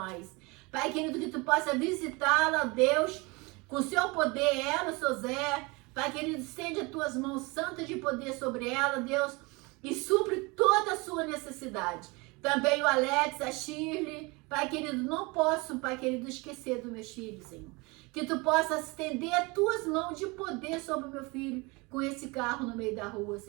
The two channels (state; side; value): quieter; left; 26.3 dB